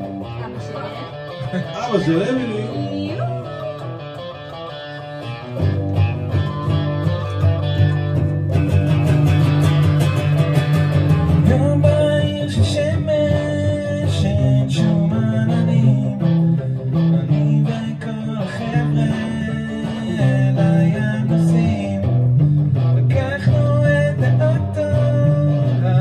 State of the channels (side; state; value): both; identical; correlation 1.00